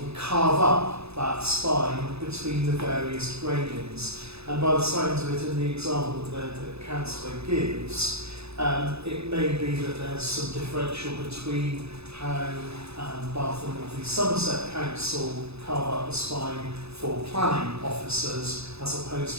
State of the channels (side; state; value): left; late; 0.79 ms